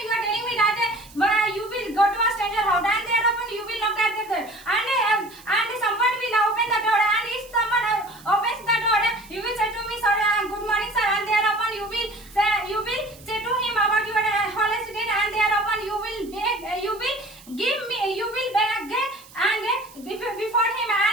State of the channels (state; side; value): noise; right; hiss, 22 dB below the sound